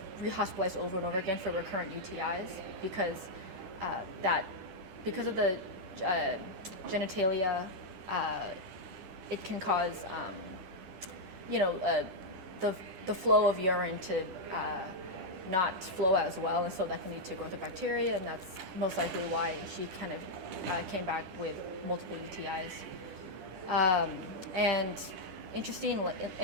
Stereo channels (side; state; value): left; late; 10 ms